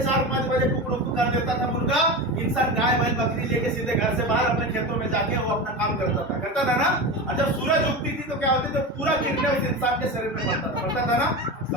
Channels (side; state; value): both; normal; correlation 0.24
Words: 4, 5 बजे कुकड़ू कर देता था मुर्गा। इंसान गाय बैल बकरी लेके सीधे घर से बाहर अपने खेतों में जाके वो अपना काम करता था ना। और जब सूरज उगती थी तो क्या होती थी? पूरा किरणें उस इंसान के शरीर में पड़ता था ना।